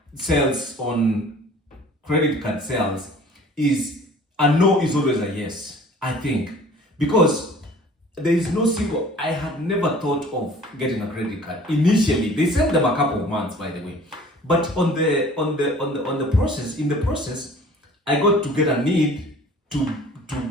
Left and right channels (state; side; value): normal; both; correlation 0.48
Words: sales on credit card sales is a no is always a yes, I think. Because there is no single, I had never thought of getting a credit card. Initially, they sent them a couple of months, by the way. But on the process, in the process, I got to get a need to